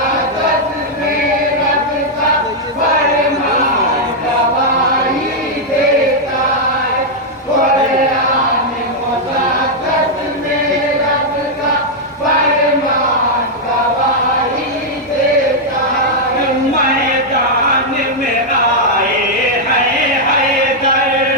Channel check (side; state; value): both; normal; correlation -0.03